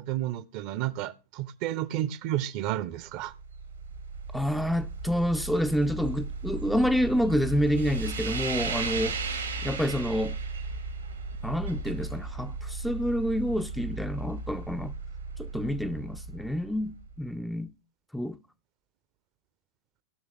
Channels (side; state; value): both; normal; correlation 0.66